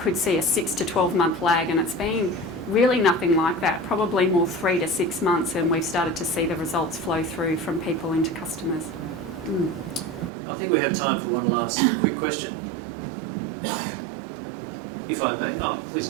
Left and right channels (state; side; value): drops out; left; at 10.3 s